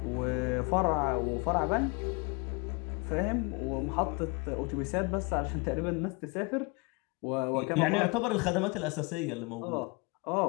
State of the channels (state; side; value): quieter; right; 29.2 dB